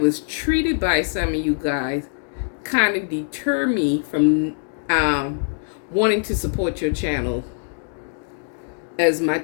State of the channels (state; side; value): silent; right; digital silence